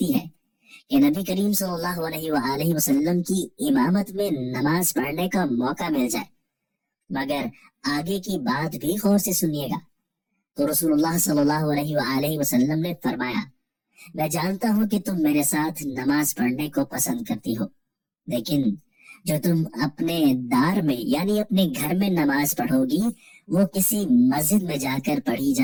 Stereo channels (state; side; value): identical; both; correlation 1.00